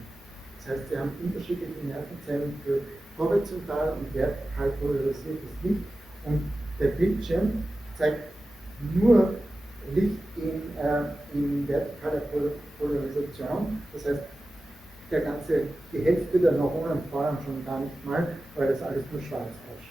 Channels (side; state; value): both; normal; correlation 0.94